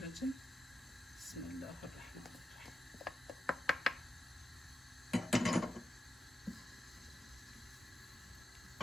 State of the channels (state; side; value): normal; both; correlation 0.87